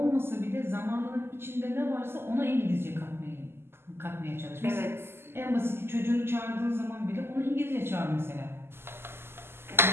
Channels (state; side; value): late; left; 0.12 ms